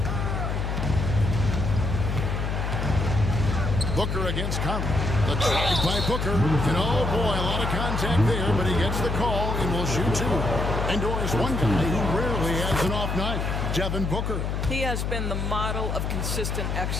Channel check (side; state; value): left; noise; hum, 1 dB below the sound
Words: Booker against Conley. The drive by Booker. And oh boy, a lot of contact there, but he gets the call and will shoot 2. And Doris, one guy who rarely has an off night, Devin Booker. He has been the model of consistent